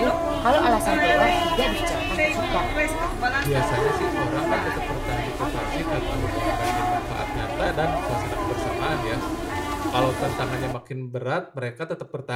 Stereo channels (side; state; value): both; identical; correlation 1.00